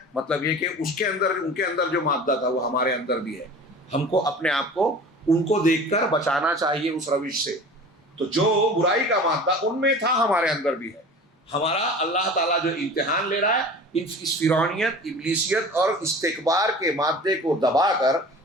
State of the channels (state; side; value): normal; both; correlation 0.40